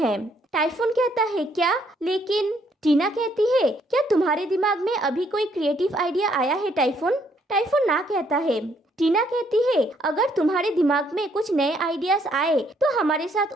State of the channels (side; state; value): both; normal; correlation 0.69